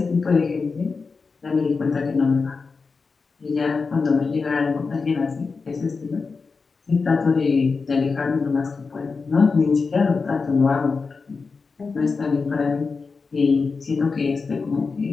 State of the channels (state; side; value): quieter; right; 4.6 dB